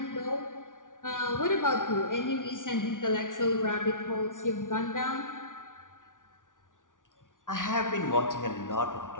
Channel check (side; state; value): right; late; 0.88 ms